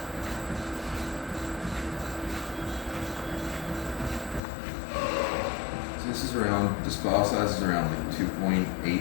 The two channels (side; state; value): right; drops out; at 4.4 s